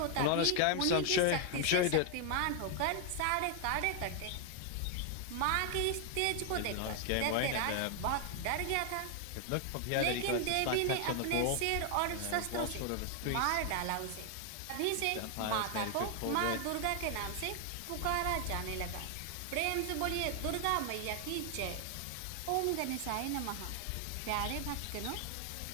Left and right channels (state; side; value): different; both; correlation 0.00